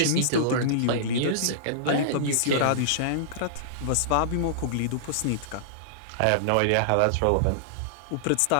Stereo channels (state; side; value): different; both; correlation -0.02